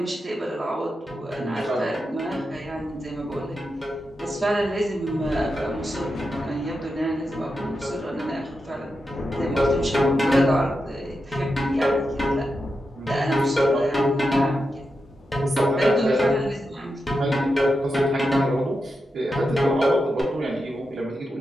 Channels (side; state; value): both; normal; correlation 0.88